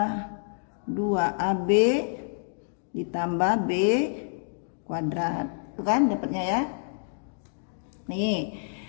2AB ditambah B kuadrat. Itu kan dapatnya ya. Nih,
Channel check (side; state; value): right; silent; digital silence